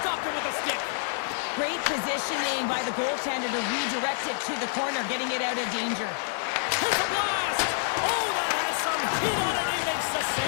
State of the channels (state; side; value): silent; right; digital silence